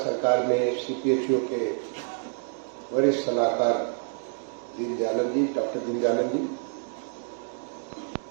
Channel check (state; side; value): silent; left; digital silence